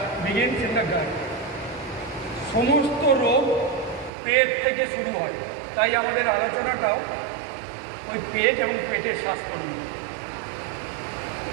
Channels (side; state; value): left; drops out; at 4.1 s